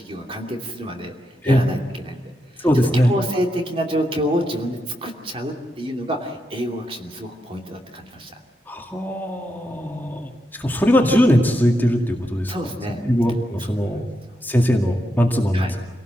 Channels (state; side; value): normal; both; correlation 0.84